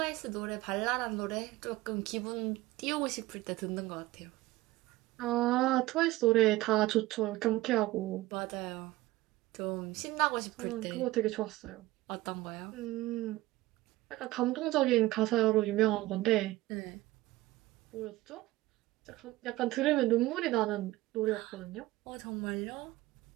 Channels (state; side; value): quieter; left; 17.9 dB